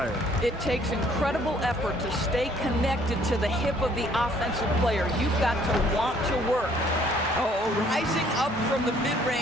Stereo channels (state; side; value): normal; both; correlation 0.61